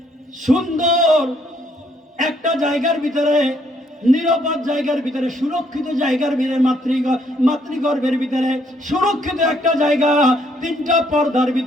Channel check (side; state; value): both; normal; correlation 0.69